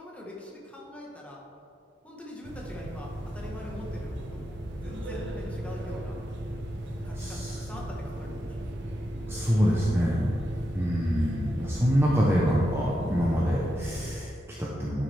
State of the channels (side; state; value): both; normal; correlation 0.87